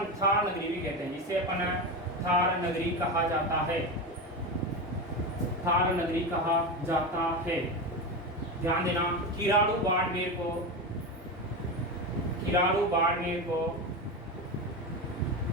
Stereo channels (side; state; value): both; normal; correlation 0.19